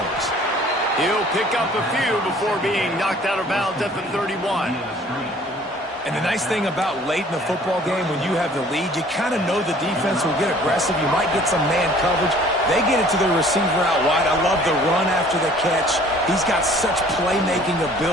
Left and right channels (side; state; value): both; normal; correlation 0.53